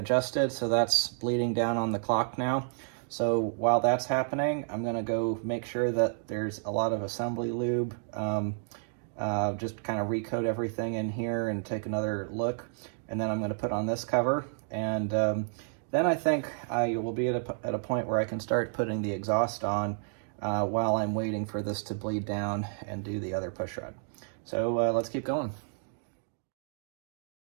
so that's bleeding down on the clock now. So while that's happening, I'm gonna go make sure that there's a lot of assembly lube, just kind of recoat everything in here and take another look. And then I'm gonna put on this cover, and then I think I will be at a point where I can start putting the exhaust on while I'm waiting for this to bleed down and do the other push rod. So let's keep going.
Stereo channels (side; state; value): left; silent; digital silence